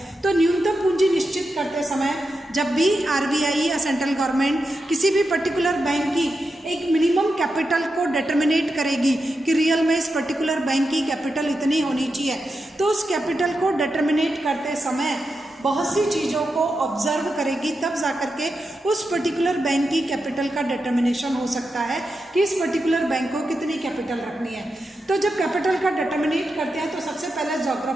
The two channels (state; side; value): normal; both; correlation 0.88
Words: तो न्यूनतम पूंजी निश्चित करते समय जब भी आरबीआई या सेंट्रल गवर्नमेंट किसी भी पर्टिकुलर बैंक की एक मिनिमम कैपिटल को डिटर्मिनेट करेगी कि रियल में इस पर्टिकुलर बैंक की कैपिटल इतनी होनी चाहिए, तो उस कैपिटल को डिटर्मिनेट करते समय बहुत सी चीज़ों को ऑब्जर्व करेगी, तब जाकर के उस पर्टिकुलर बैंक की कैपिटल का डिटर्मिनेशन हो सकता है कि इस पर्टिकुलर बैंक को कितनी कैपिटल रखनी है। तो जब कैपिटल का डिटर्मिनेट करते हैं तो सबसे पहले